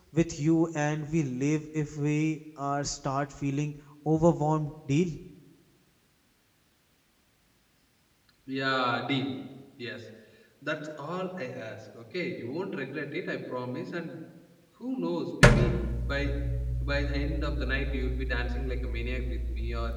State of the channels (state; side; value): identical; both; correlation 1.00